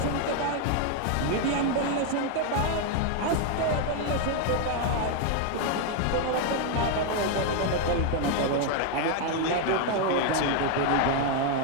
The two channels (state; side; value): different; both; correlation 0.01